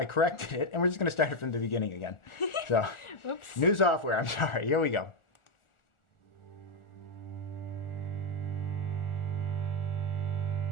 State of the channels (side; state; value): right; late; 1.4 ms